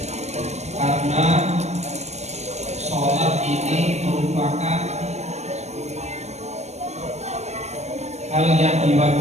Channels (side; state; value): left; late; 0.32 ms